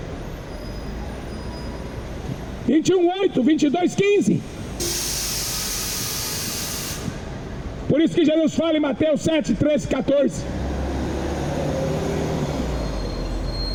21, 8, 22, 15. Por isso que Jesus fala em Mateus 7, 13, 14.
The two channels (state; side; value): identical; both; correlation 1.00